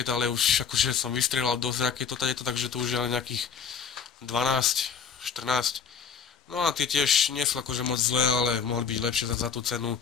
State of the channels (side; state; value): right; quieter; 6.5 dB